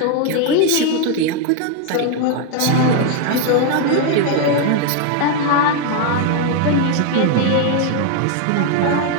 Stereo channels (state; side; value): different; both; correlation 0.01